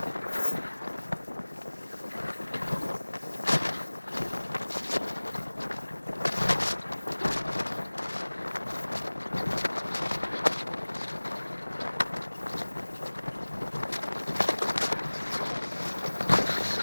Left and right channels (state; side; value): inverted; both; correlation -1.00